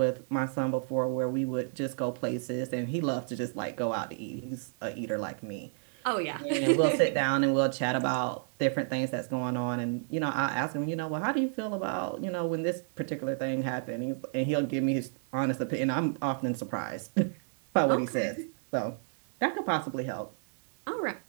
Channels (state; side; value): silent; left; digital silence